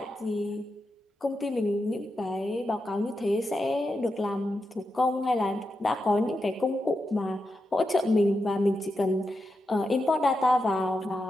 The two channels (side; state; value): both; normal; correlation 0.88